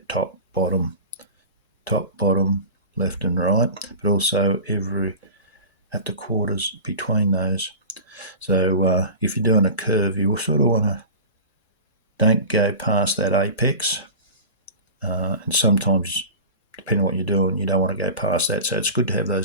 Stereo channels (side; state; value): both; inverted; correlation -0.34